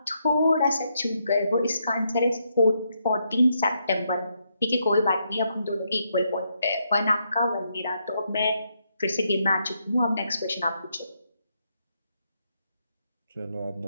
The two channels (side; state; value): both; inverted; correlation -0.79